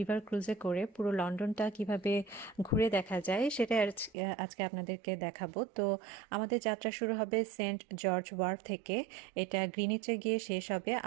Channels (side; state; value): left; drops out; at 4.1 s